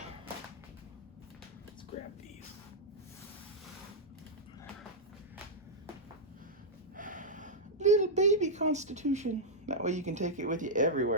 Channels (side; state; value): both; normal; correlation -0.07